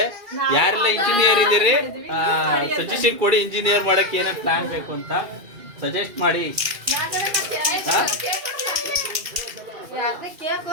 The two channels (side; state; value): left; late; 2.4 ms